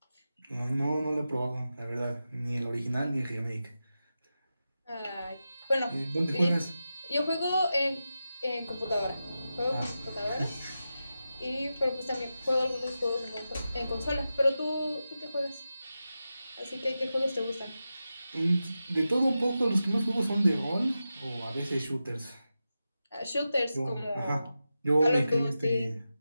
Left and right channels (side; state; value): both; inverted; correlation -0.91